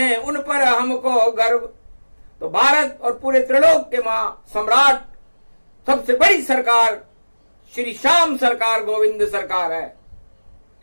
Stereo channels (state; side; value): inverted; both; correlation -1.00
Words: उन पर हमको गर्व। तो भारत और पूरे त्रिलोक के मां सम्राट, सबसे बड़ी सरकार श्री श्याम सरकार गोविंद सरकार है,